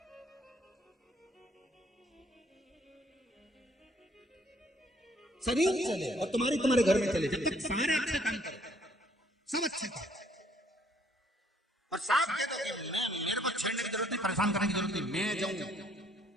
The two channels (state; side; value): normal; both; correlation 0.65